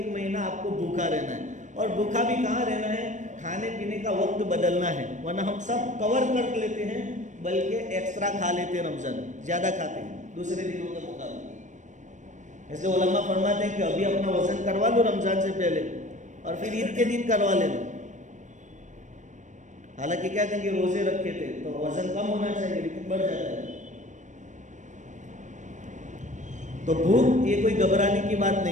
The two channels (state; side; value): late; left; 0.35 ms